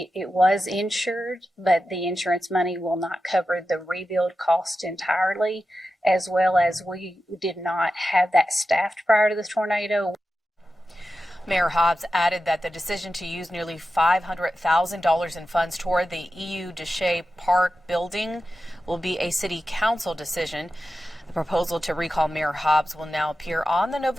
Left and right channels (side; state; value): both; normal; correlation 0.92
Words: was insured, but the insurance money will not cover the rebuild cost entirely, as well as we did not have that staffed prior to the tornado. Mayor Hobbs added that the decision to use nearly $500,000 in funds toward the EU Deshay Park building will be a city council decision. The proposal to recall Mayor Hobbs will now appear on the